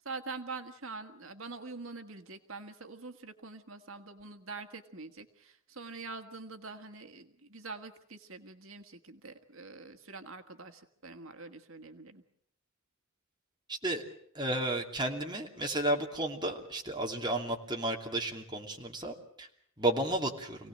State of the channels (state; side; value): normal; both; correlation 0.13